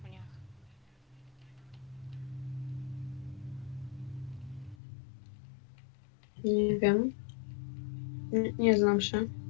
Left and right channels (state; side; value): drops out; right; at 4.8 s